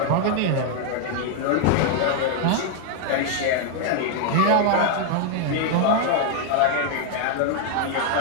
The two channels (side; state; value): both; different; correlation 0.00